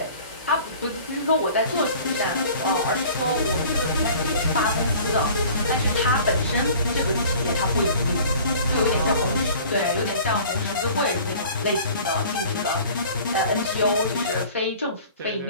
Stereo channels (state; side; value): inverted; both; correlation -0.46